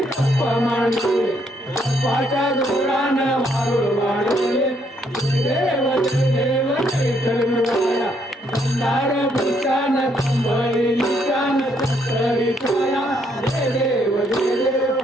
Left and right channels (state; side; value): normal; both; correlation 0.71